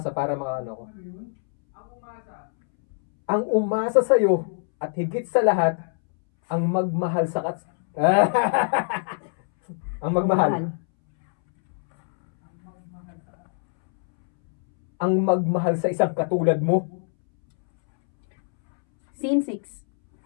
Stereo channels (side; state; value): right; silent; 63 dB below the other